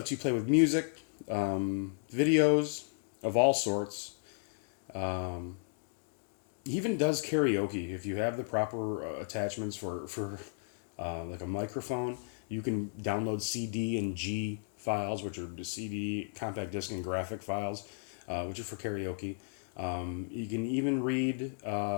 you play with music, videos of all sorts. Even does karaoke if you have the proper attachments for like a microphone. You can download CD and G files, which are the CD, compact disc, and graphic files, which are for karaoke. You can even read,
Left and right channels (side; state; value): right; silent; digital silence